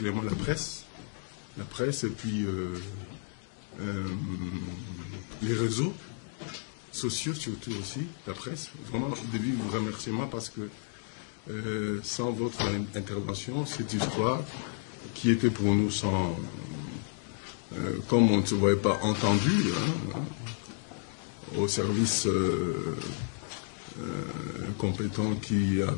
la presse et puis les réseaux sociaux surtout aussi, la presse. Vraiment, au début, vous remerciez moi parce que sans votre intervention, cette histoire qui était pour nous sans... comme on ne se voyait pas entendu, au service compétent qui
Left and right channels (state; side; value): silent; right; 57 dB below the other